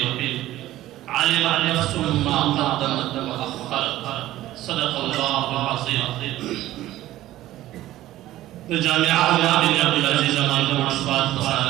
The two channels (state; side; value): quieter; left; 14.9 dB